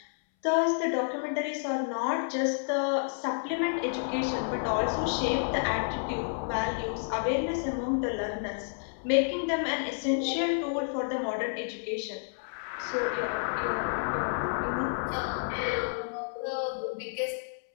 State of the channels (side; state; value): right; silent; 58 dB below the other